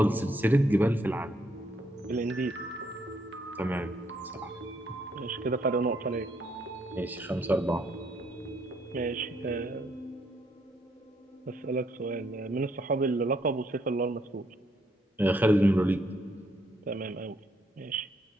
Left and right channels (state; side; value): normal; both; correlation 0.72